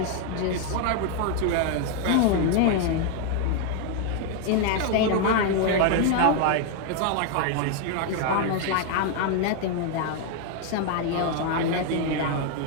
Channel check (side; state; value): both; different; correlation 0.00